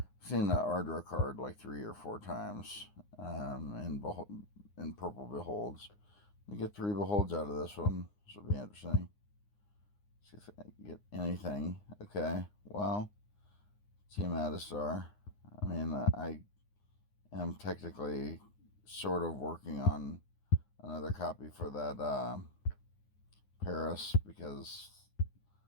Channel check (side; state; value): right; late; 9.7 ms